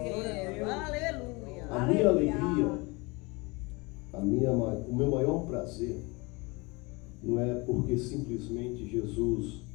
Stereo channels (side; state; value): right; quieter; 26.4 dB